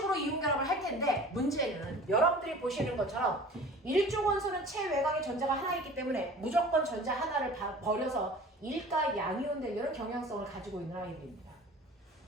이온결합을 할 텐데 문제는 여러분들이 보시는 것처럼 일족 원소는 체외곽에 전자가 하나 있기 때문에 무조건 전자 하나를 버려서 일가 양이온 되려는 경향성을 가지고 있는 아이들입니다.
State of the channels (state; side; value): normal; both; correlation 0.43